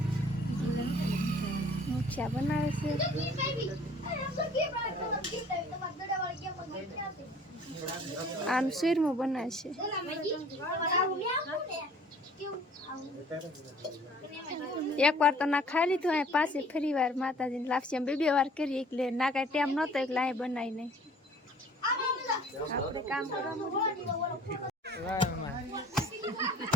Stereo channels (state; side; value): normal; both; correlation 0.52